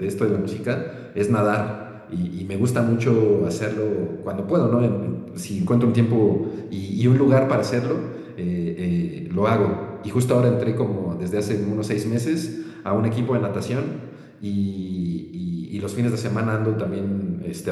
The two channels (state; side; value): identical; both; correlation 1.00